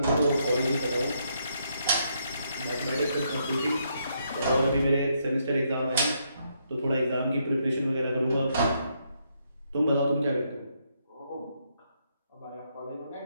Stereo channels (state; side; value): inverted; both; correlation -0.76